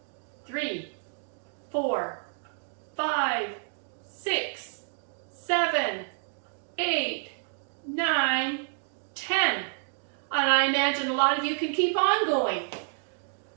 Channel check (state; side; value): silent; left; digital silence